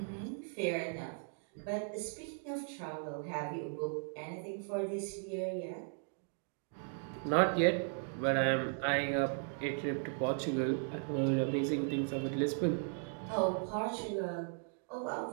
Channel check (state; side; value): silent; left; 53 dB below the other